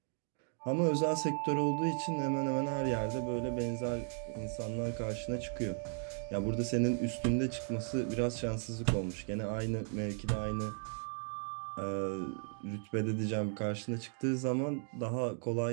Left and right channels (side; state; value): left; silent; 54 dB below the other